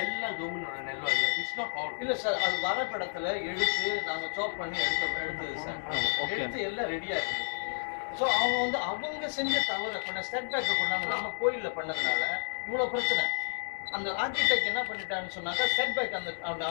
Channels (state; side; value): silent; right; digital silence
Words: எல்லாம் கவர்மெண்டோட நிலம் இல்ல. It's not all. இல்ல சார், அது வரப்படத்துல எடுத்து நாங்க சாப் பண்ணி எடுத்தது சார். எடுத்து எல்லாம் ரெடியா இருக்கு. ஸோ அவங்க வந்து அவங்க செஞ்ச தவறு பண்ண ஸ்டெப் பேக் பண்ணாங்க. நம்ம கோயில்ல பண்ணதுனால இவ்வளவு பிரச்சனை. அந்த ஆர்கிடெக்ட் என்ன பண்ணிட்டான்னு சொன்னாங்க, செட் பேக் அந்த